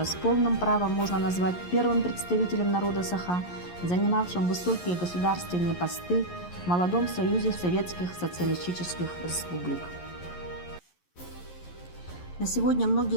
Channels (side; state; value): right; late; 11 ms